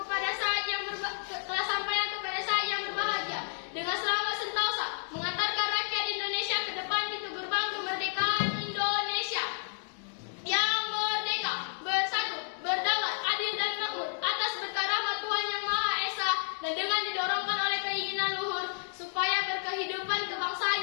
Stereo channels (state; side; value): silent; right; digital silence